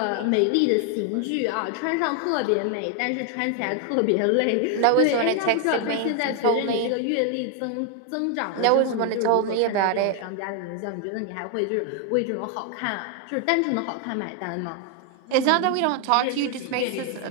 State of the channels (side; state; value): both; different; correlation 0.00